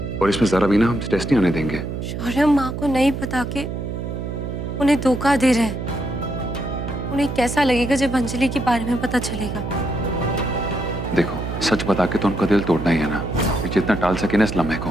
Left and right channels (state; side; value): noise; right; hum, 5 dB below the sound